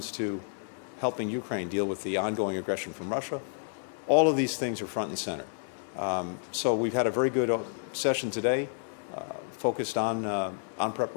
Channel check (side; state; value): right; silent; digital silence